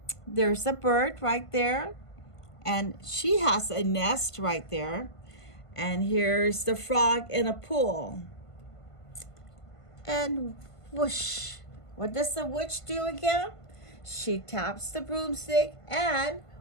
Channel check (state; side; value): late; right; 1.5 ms